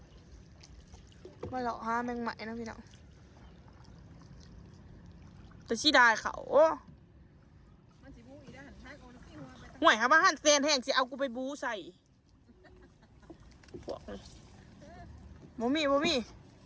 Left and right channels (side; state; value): both; identical; correlation 1.00